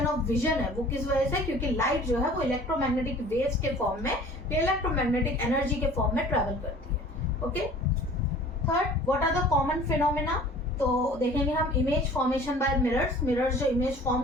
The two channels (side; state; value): both; normal; correlation 0.47